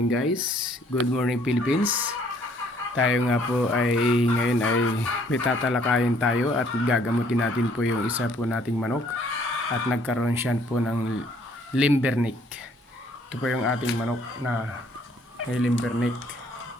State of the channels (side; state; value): both; normal; correlation 0.62